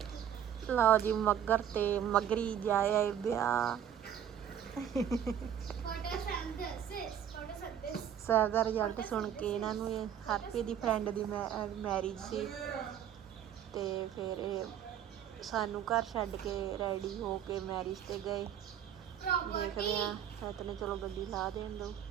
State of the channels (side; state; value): left; quieter; 9.6 dB